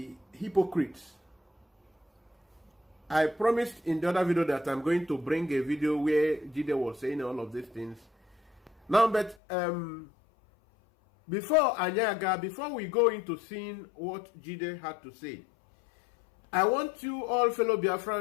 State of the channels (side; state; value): right; drops out; at 9.3 s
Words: hypocrites. I promised in the other video that I'm going to bring a video where Jide was saying all of these things. Now, but before we go into seeing what Jide had to say, I want you all fellow